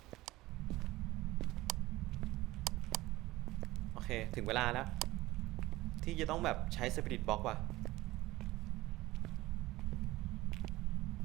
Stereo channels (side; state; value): left; quieter; 18.2 dB